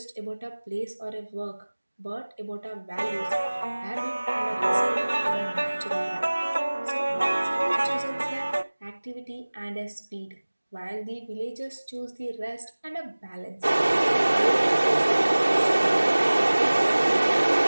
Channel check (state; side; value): inverted; both; correlation -1.00